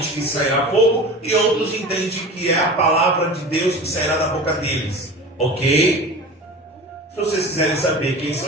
que sairá fogo e outros entendem que é a palavra de Deus que sairá da boca deles. Ok? Se vocês quiserem saber quem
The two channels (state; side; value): normal; both; correlation 0.34